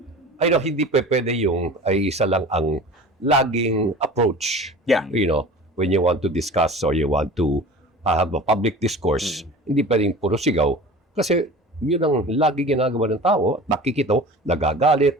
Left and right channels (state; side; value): normal; both; correlation 0.38